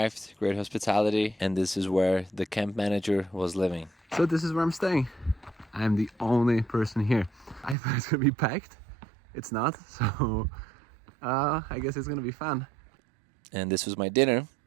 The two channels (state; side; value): drops out; left; at 7.8 s